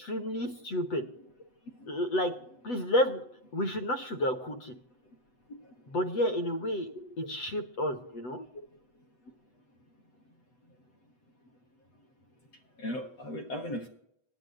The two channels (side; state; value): right; late; 8.0 ms